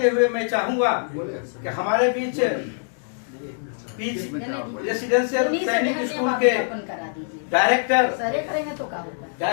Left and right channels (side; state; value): right; silent; digital silence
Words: हुए मैं चाहूंगा कि हमारे बीच रेसिडेंशियल सैनिक स्कूल के